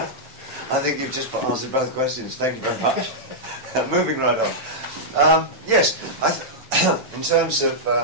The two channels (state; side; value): late; left; 7.7 ms